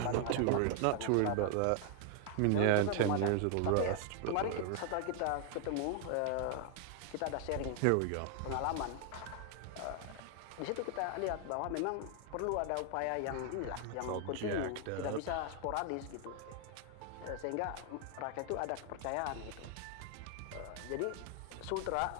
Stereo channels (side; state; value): both; different; correlation 0.00